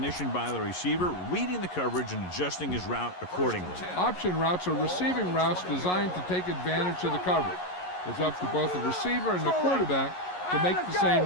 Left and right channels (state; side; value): late; right; 11 ms